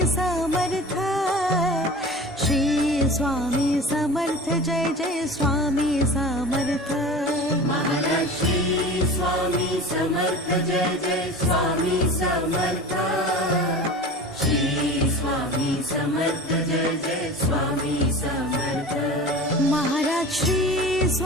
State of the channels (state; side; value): normal; both; correlation 0.36